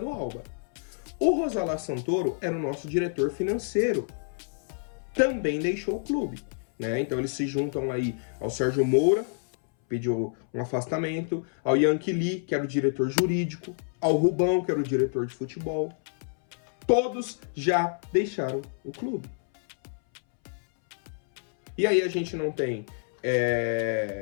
Alba. O Rosalá Santoro era o nosso diretor financeiro. Também deixou o clube, né? Então eles se juntam aí ao Sérgio Moura, pediu um afastamento, ao Yankee Lee, que era o diretor jurídico, ao Rubão, que era o diretor de futebol. Todos já deixaram o clube. E aí a gente não tem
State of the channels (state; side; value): silent; right; 59 dB below the other